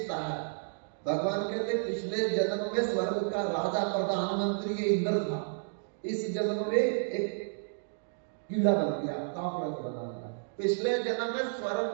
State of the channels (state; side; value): silent; left; digital silence